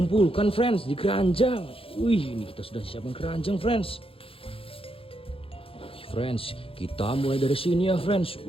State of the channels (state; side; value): late; right; 0.27 ms